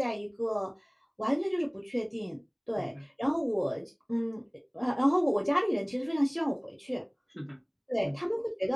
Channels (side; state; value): both; identical; correlation 1.00